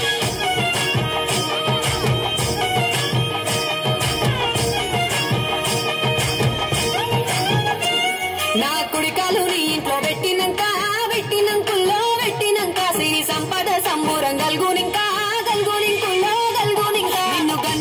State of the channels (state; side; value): identical; both; correlation 1.00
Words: నా కుడికాలు నీ ఇంట్లో పెట్టినంకుల్లో పెట్టినంక సిరి సంపద సంబూరం గల్గునింకా గల్గునింకుల్లో గల్గునింకా నిన్ను